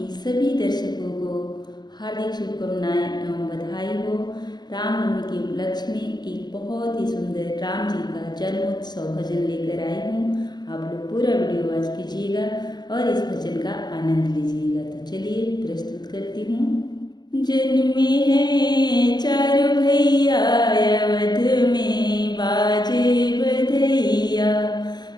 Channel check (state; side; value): late; right; 0.20 ms